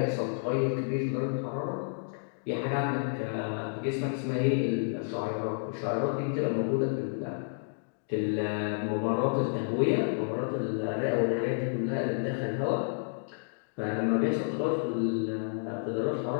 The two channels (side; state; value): right; silent; digital silence